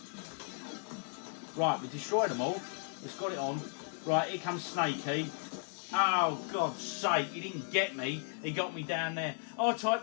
Right, we destroyed them all. Let's got it on. Right, here comes Snakey. Oh, God's sake, he didn't get me. He got me down there.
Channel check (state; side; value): silent; right; 54 dB below the other